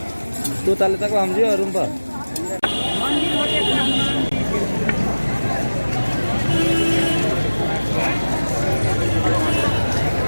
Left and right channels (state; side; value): inverted; both; correlation -1.00